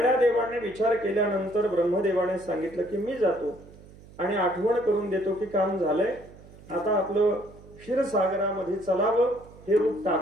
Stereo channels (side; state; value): right; noise; hum, 21 dB below the sound